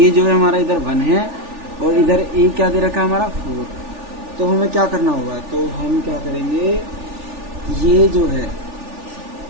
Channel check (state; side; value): late; left; 3.4 ms